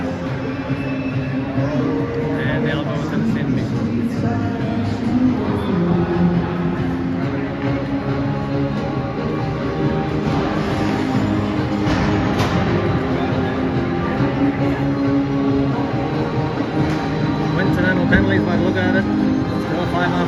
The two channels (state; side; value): identical; both; correlation 1.00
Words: And they'll go to the stand meeting. Coincidental penalties by the look at it. Still